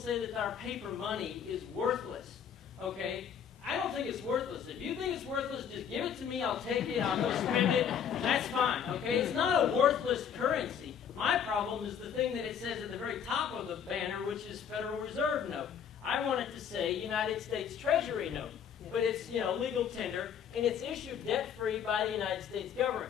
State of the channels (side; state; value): right; quieter; 8.0 dB